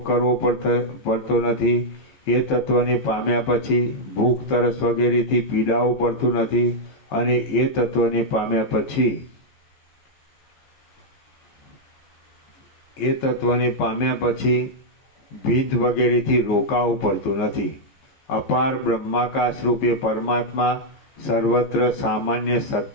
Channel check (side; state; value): right; late; 15 ms